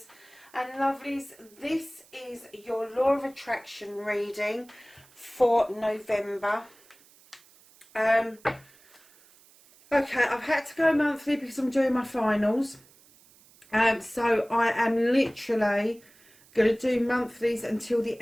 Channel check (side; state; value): right; noise; hiss, 27 dB below the sound